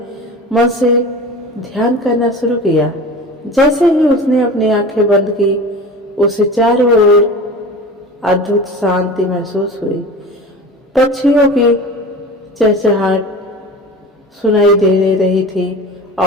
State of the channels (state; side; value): normal; both; correlation 0.35